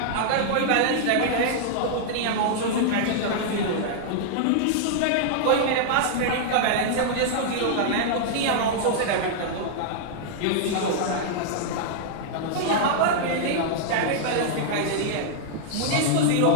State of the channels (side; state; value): both; different; correlation -0.01